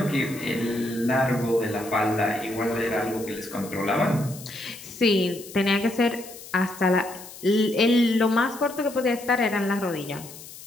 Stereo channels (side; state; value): left; noise; hiss, 16 dB below the sound